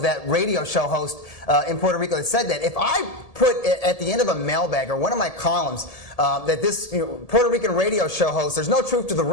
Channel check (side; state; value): right; late; 1.7 ms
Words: that radio show host in Puerto Rico that said that, if I put at the end of a mailbag or one of my columns that this Puerto Rican radio show host, there's no truth to the